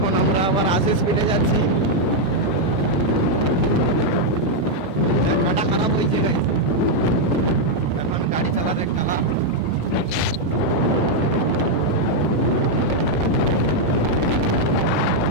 আমরা আবার 80 স্পিডে যাচ্ছি। চাকাটা খারাপ হয়েছে গাইস, এখন গাড়ি চালাতে কালা।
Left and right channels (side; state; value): both; normal; correlation -0.01